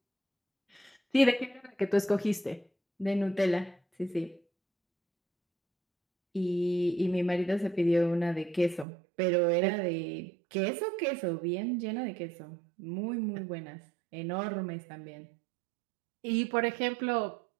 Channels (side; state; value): left; drops out; at 8.8 s